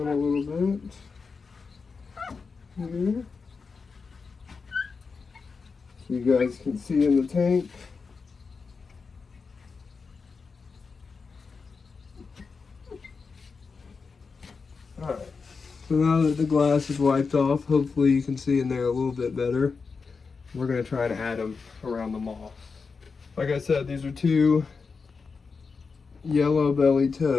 a little bit here, so you guys can see in the tank. Alright, so now that the glass is wiped off, hopefully you can see in there a little bit better. We're going to try and add them around the moss. Like I said, these are two yellow belly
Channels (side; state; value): right; quieter; 4.9 dB